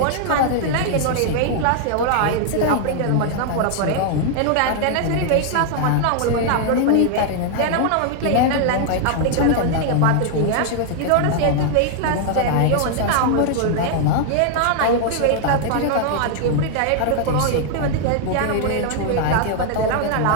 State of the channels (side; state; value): both; different; correlation 0.00